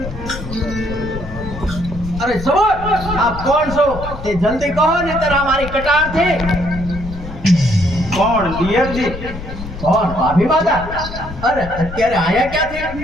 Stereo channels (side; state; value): left; noise; rumble, 10 dB below the sound